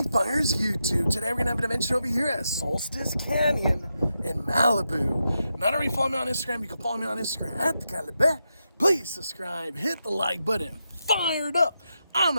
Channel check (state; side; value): inverted; both; correlation -0.86